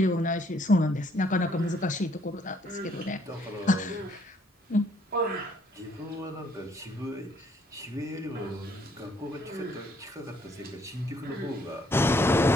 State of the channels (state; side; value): normal; both; correlation 0.65